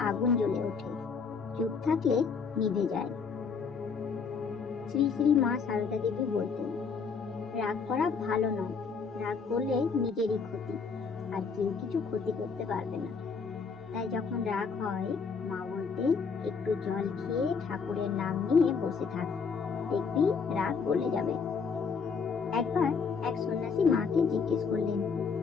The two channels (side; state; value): right; quieter; 5.5 dB